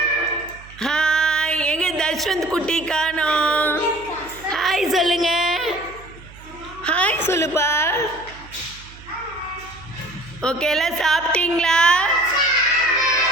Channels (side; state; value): right; noise; hum, 20 dB below the sound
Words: Hi. எங்க தஷ்வந்த் குட்டி காணோம். ஹாய் சொல்லுங்க. ஹாய் சொல்லுப்பா. ஓகே, எல்லாம் சாப்பிட்டீங்களா?